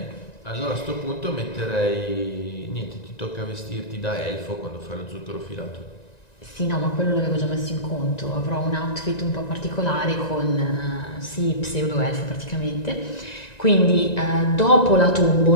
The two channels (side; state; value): right; late; 1.9 ms